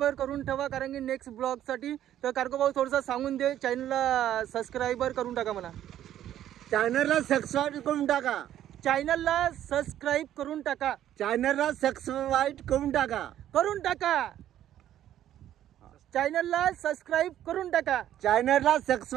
करून ठेवा कारण की नेक्स्ट ब्लॉगसाठी. तर कार्गो भाऊ थोडंसं सांगून दे चॅनलला सबस्क्राईबर करून टाका म्हणा. चॅनलला सबस्क्राईब करून टाका. चॅनलला सबस्क्राईब करून टाका. चॅनलला सबस्क्राईब करून टाका. चॅनलला सबस्क्राईब करून टाका. चॅनलला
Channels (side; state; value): left; quieter; 11.7 dB